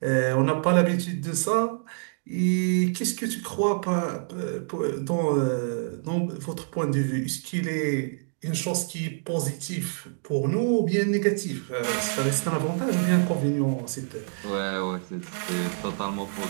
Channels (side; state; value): left; silent; digital silence